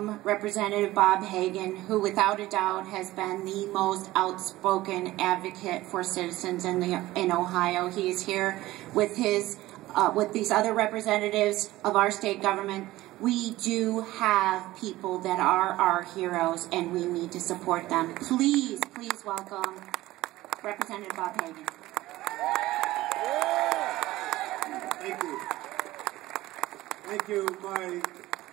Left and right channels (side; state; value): left; quieter; 17.2 dB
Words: Representative Bob Hagan, who without a doubt has been the most outspoken advocate for citizens in Ohio. He is here with these other representatives of our state government. We do have people that are our heroes, and we need to support them. Please, please welcome Representative Bob Hagan. Thank you. Thank you, my